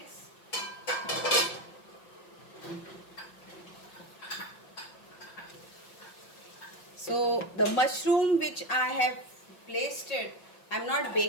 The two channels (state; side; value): late; right; 5.8 ms